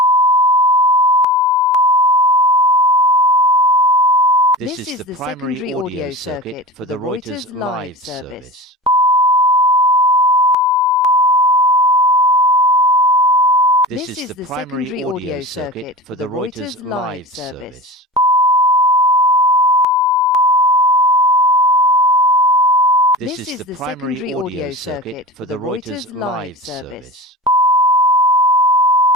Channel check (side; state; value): both; normal; correlation 0.32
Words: This is the primary audio circuit for the Reuters live service. This is the primary audio circuit for the Reuters live service. This is the primary audio circuit for the Reuters live service.